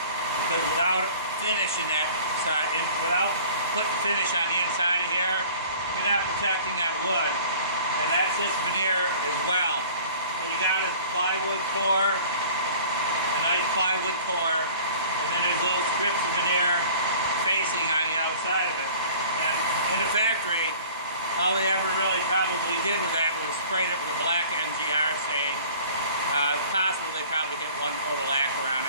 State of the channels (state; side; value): inverted; both; correlation -0.47